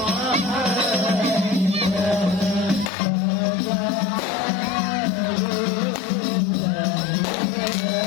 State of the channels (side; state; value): right; drops out; at 2.9 s